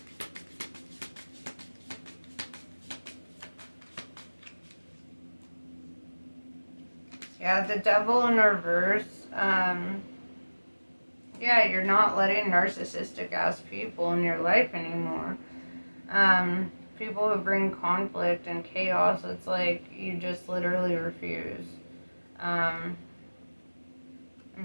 Yeah, the Devil in reverse. Yeah, you're not letting narcissistic ass people in your life anymore. People who bring conflict and chaos, it's like you just literally refuse. I'm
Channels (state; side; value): inverted; both; correlation -1.00